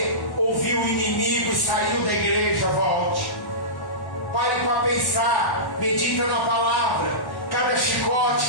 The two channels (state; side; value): late; right; 1.1 ms